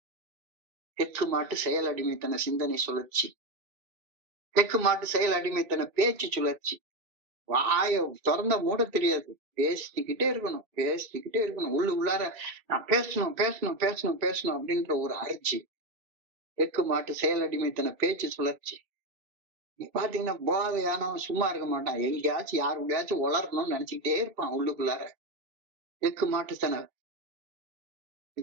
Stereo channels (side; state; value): left; late; 2.7 ms